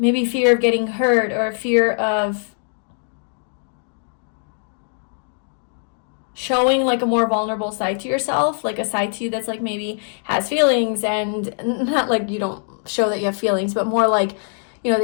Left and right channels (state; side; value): silent; right; digital silence